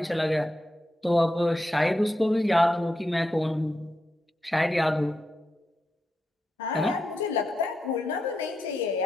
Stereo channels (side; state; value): both; normal; correlation 0.86